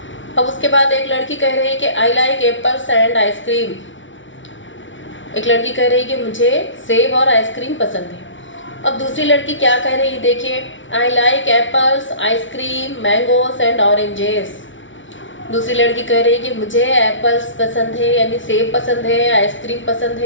अब उसके बाद एक लड़की कह रही है कि I like apples and ice cream. एक लड़की कह रही है कि मुझे सेब और आइसक्रीम पसंद है। अब दूसरी लड़की क्या कह रही है, देखिए, I like apples, ice cream, mangoes and oranges. दूसरी लड़की कह रही है कि मुझे एप्पल्स पसंद है, यानी सेब पसंद है, आइसक्रीम पसंद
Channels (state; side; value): late; right; 0.56 ms